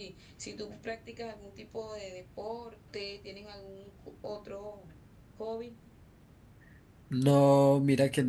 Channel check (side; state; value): both; identical; correlation 1.00